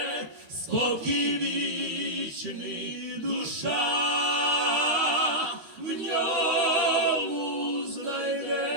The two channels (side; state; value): left; late; 12 ms